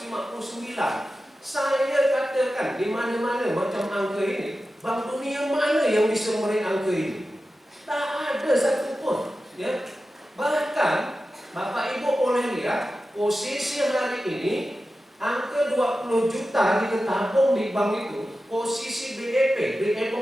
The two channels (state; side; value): normal; both; correlation 0.93